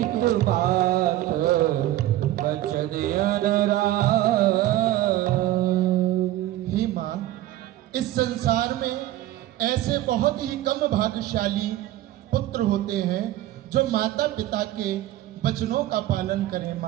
बात वचन अनुरागी। हे माँ, इस संसार में ऐसे बहुत ही कम भाग्यशाली पुत्र होते हैं जो माता पिता के वचनों का पालन करें।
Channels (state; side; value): quieter; left; 14.7 dB